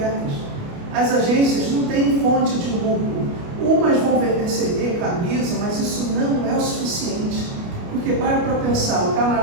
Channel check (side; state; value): left; late; 29 ms